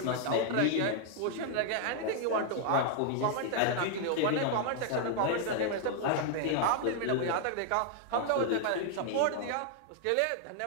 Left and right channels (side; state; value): both; different; correlation 0.00